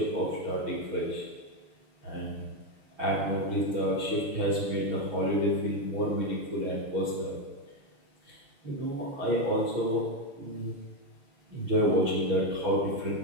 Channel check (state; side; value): late; left; 6.3 ms